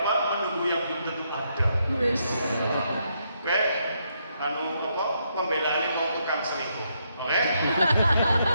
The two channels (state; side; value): inverted; both; correlation -0.77